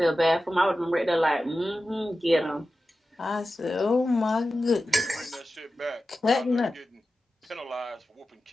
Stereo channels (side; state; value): both; normal; correlation 0.93